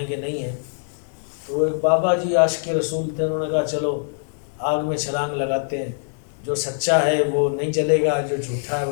کہ نہیں ہیں. تو وہ ایک بابا جی عاشق رسول تھے. انہوں نے کہا چلو آگ میں چھلانگ لگاتے ہیں، جو سچا ہے وہ نہیں جلے گا، جو جھوٹا ہے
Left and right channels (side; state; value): right; silent; 63 dB below the other